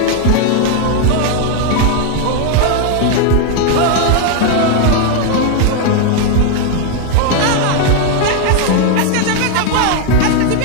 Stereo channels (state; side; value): different; both; correlation 0.01